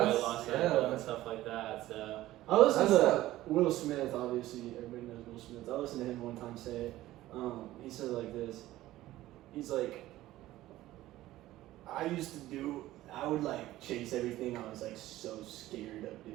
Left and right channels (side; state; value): left; quieter; 15.6 dB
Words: loss and stuff like that. So I listened to Will Smith, obviously everybody knows Will Smith. I listened to him one time say, he said it like this. He's like, I would like chase everything I was like so scared of